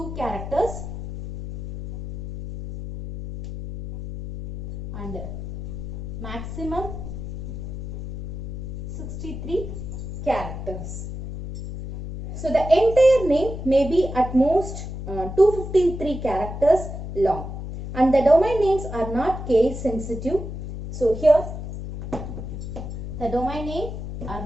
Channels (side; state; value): left; noise; hum, 7 dB below the sound